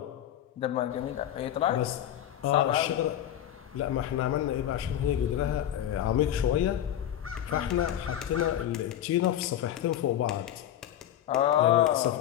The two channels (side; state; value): right; quieter; 11.3 dB